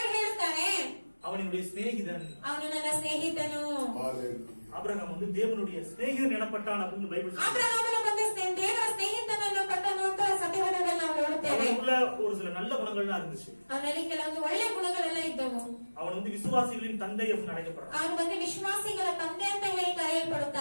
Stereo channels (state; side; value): inverted; both; correlation -1.00